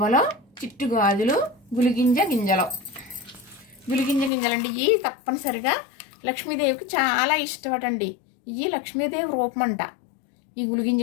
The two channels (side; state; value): right; drops out; at 4.3 s